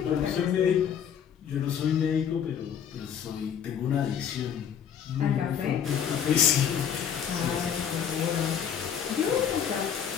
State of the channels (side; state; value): right; quieter; 8.3 dB